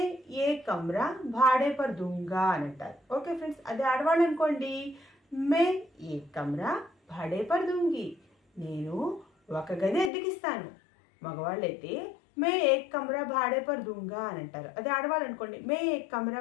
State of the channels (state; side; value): drops out; right; at 10.1 s